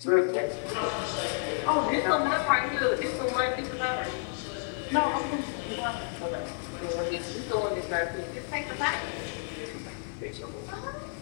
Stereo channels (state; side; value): silent; right; 57 dB below the other